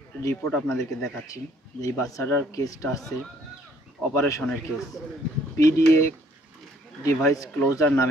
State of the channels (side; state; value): both; normal; correlation 0.63